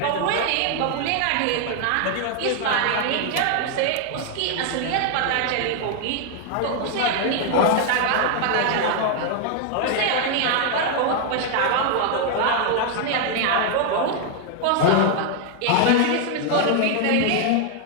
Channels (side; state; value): both; different; correlation 0.00